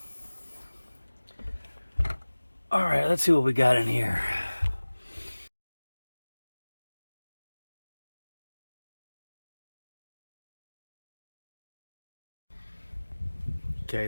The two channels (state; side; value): inverted; both; correlation -1.00